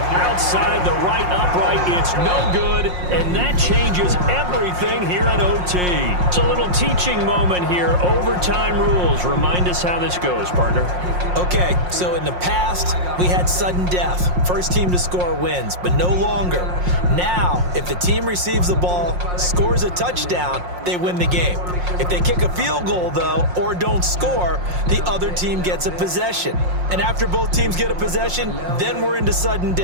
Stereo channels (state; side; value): late; left; 5.6 ms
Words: outside the right upright. It's no good, and that changes everything here in OT. It's a little teaching moment here. Overtime rules. Remind us how this goes, partner. Okay, so in the past, we had sudden death. First team to score wins, but no longer. Now, if the team receives the ball, scores a touchdown, they win the game. If they kick a field goal, though, or don't score, the other team gets a possession. And after both teams get a possession, then we're into sudden